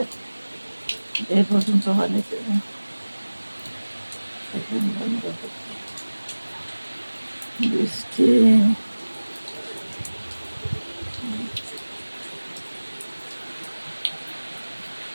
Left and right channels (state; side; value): inverted; both; correlation -1.00